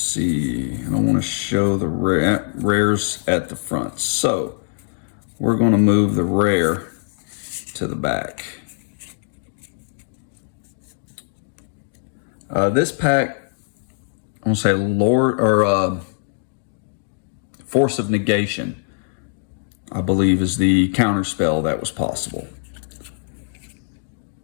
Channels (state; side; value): silent; right; digital silence